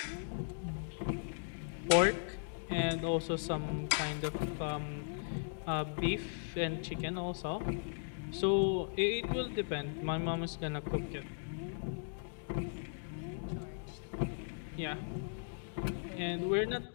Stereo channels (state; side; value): silent; right; digital silence